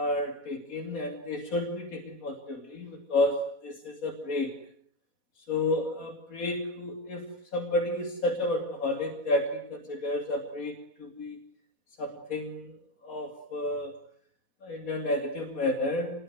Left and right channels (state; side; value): late; right; 4.1 ms